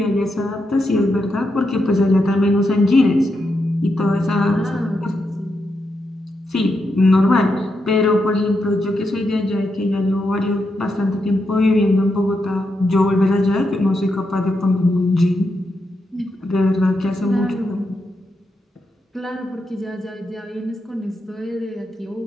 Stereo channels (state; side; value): normal; both; correlation 0.84